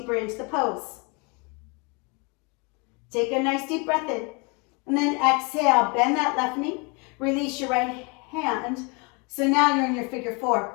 into the pose. Take a nice deep breath in. And then exhale, bend that left knee. Release your right hand. So now you're in your figure four.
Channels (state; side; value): quieter; right; 29.7 dB